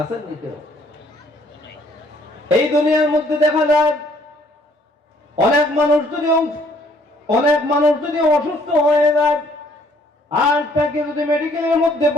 নি কেউ? এই দুনিয়ার মধ্যে দেখা যায় অনেক মানুষ যদি অসুস্থ হয়ে যায় আর তাকে যদি মেডিকেলের মধ্যে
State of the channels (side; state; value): both; normal; correlation 0.63